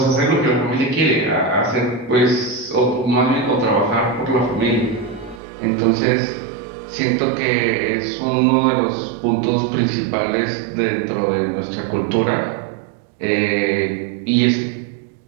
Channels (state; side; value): drops out; left; at 5.4 s